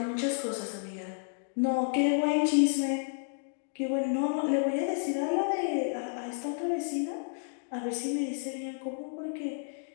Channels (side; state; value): right; silent; digital silence